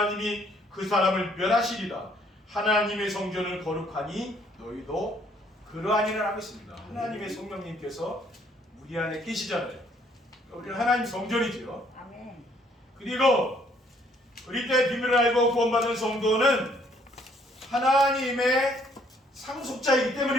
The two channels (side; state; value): both; normal; correlation 0.65